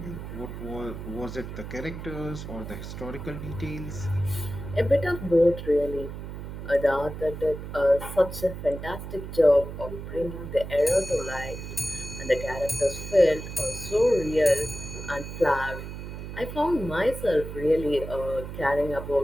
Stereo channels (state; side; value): noise; right; hum, 9 dB below the sound